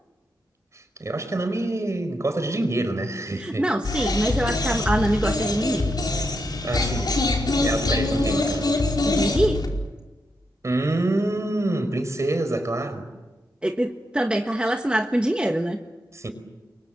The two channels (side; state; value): both; normal; correlation 0.83